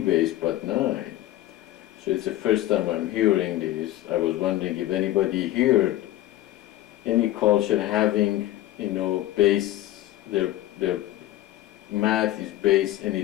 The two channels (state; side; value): quieter; right; 14.6 dB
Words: but 9. So it's the first time I'm hearing this. I was wondering if anybody heard any culture having, base, their math is base